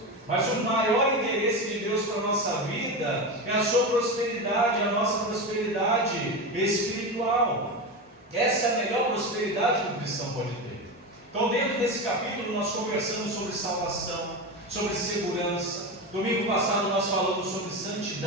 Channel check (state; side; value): normal; both; correlation 0.20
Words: Mas o maior interesse de Deus para a nossa vida é a sua prosperidade, a nossa prosperidade espiritual. Essa é a melhor prosperidade que o cristão pode ter. Então, dentro desse capítulo, nós conversamos sobre salvação, sobre segurança. Domingo passado nós falamos sobre